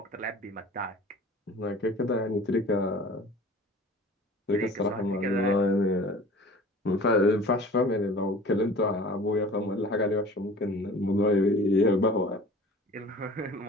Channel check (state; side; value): normal; both; correlation 0.44